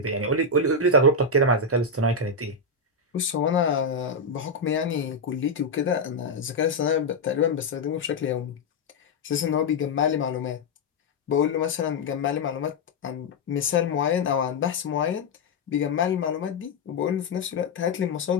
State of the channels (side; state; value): right; quieter; 3.2 dB